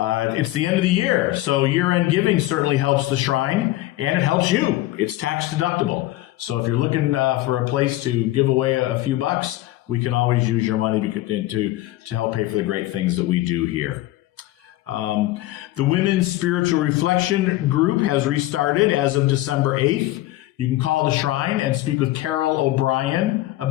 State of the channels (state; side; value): quieter; right; 16.2 dB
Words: the end of the year, so year-end giving certainly helps the shrine, and it helps you. It's tax deductible. So if you're looking for a place to give away a few bucks, we can always use your money to help pay for the great things that we do here. The Women's Spiritual Reflection Group has restarted as of December 8th. You can call the shrine and speak with Carol O'Brien